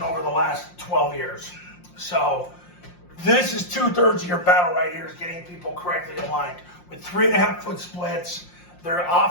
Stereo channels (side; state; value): right; late; 5.6 ms